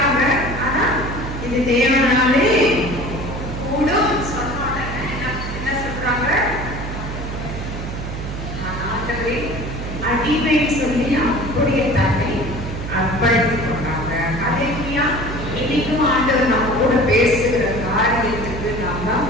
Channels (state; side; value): noise; right; hum, 6 dB below the sound